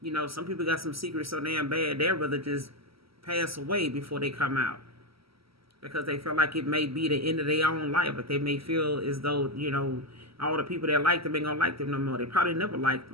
Some people got some secrets so damn bad they'd rather just pass away before they come out, because they feel like it may be the end of their own life. But they may feel as though, all the people that like them ain't gonna like them no more. They probably never liked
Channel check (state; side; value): late; left; 0.75 ms